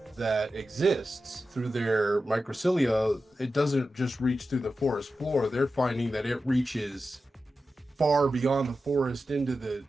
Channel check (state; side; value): normal; both; correlation 0.92